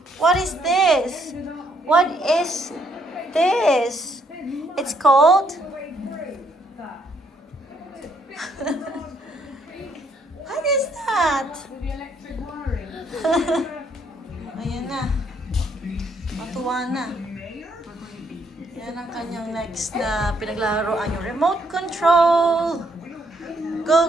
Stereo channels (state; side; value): normal; both; correlation 0.70